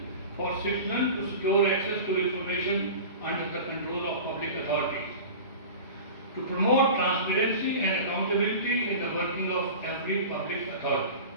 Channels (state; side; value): inverted; both; correlation -0.34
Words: for citizens to secure access to information under the control of public authorities, to promote transparency and accountability in the working of every public authority.